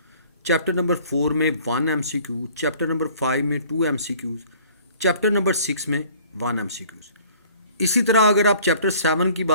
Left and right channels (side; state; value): both; inverted; correlation -0.53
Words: चैप्टर नंबर 4 में 1 MCQ, चैप्टर नंबर 5 में 2 MCQs, चैप्टर नंबर 6 में 1 MCQs। इसी तरह अगर आप चैप्टर 7 की